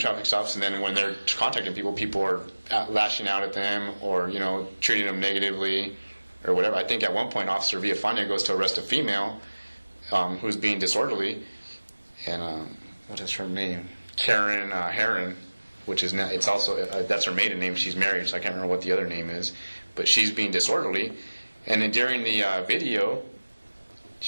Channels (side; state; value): both; inverted; correlation -1.00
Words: stops, and then when they're contacting people, people are lashing out at them or treating them negatively or whatever. I think at one point Officer Villafana goes to arrest a female who's being disorderly, and what is her name? Karen Heron, which is it's also that's her maiden name. She's married, so I can't remember what the other name is, but she's being disorderly, and then during the video,